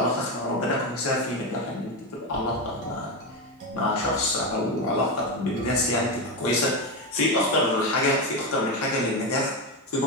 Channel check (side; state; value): both; normal; correlation 0.13